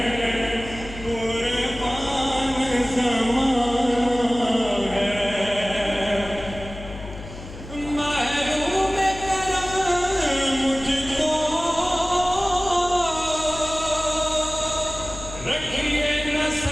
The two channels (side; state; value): left; noise; hum, 13 dB below the sound